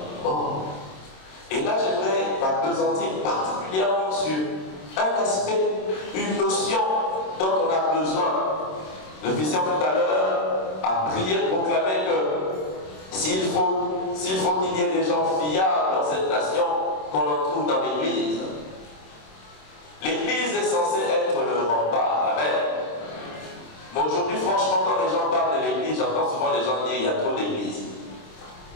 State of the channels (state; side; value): late; right; 26 ms